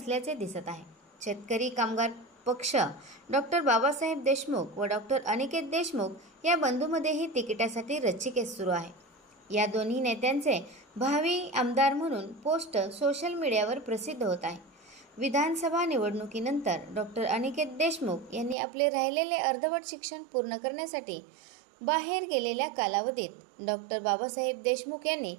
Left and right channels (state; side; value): drops out; left; at 18.6 s